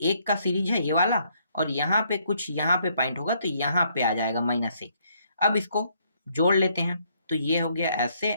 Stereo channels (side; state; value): both; inverted; correlation -0.70